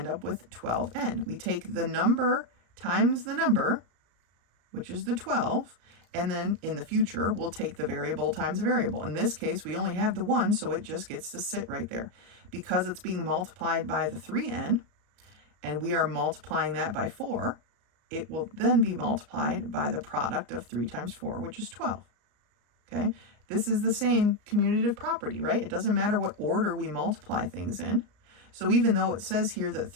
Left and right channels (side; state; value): left; late; 34 ms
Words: up with 12n. We take the number times the number, which is the 12, and then in the future, we'll take the variable times the variable. In this case, we only have the 1, so it just gets to sit right there. Because it's being multiplied by the 3n, and we are multiplying that by 4, it will then be multiplied by the product of 3 times 4, which is 12. Okay? This is the same commutative property, right? It doesn't matter what order we multiply things in. So even though it says here that